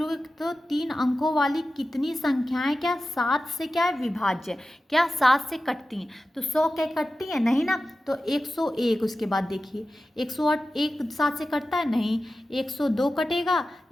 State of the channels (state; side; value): normal; both; correlation 0.94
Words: तो 3 अंकों वाली कितनी संख्याएं क्या 7 से क्या है विभाज्य, क्या 7 से कटती हैं। तो 100 क्या कटती है नहीं ना, तो 101। उसके बाद देखिए 108 एक 7 से कटता है नहीं, 102 कटेगा,